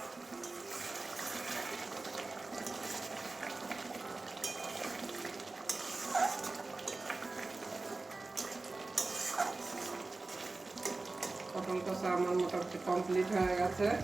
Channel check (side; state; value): left; quieter; 3.4 dB